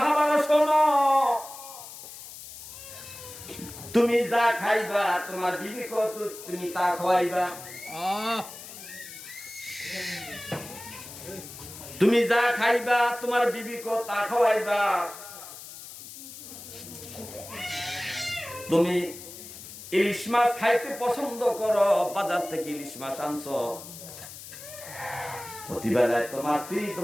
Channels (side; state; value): left; noise; hiss, 14 dB below the sound